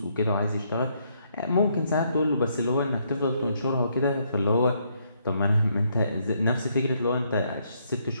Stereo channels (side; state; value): both; inverted; correlation -0.73